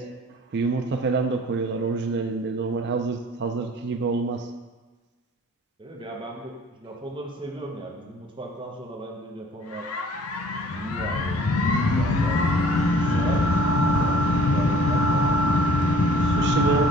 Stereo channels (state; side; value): normal; both; correlation 0.51